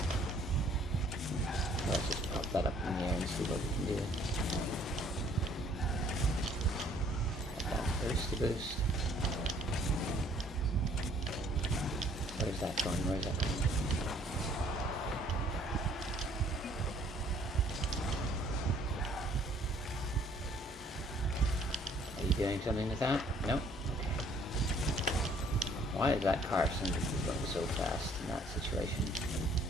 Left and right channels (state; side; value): normal; both; correlation 0.60